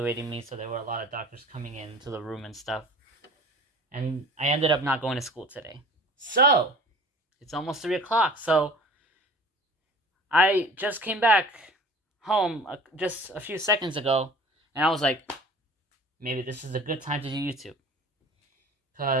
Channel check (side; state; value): both; normal; correlation 0.44